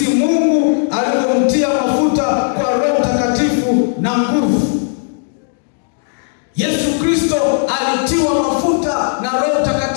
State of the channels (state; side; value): silent; right; digital silence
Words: Mungu alivyomtia mafuta kwa Roho Mtakatifu na nguvu. Yesu Kristo alitiwa mafuta na Roho